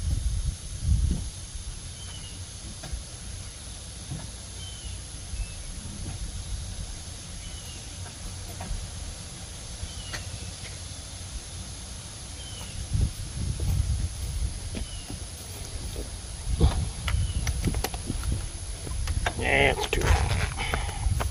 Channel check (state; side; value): identical; both; correlation 1.00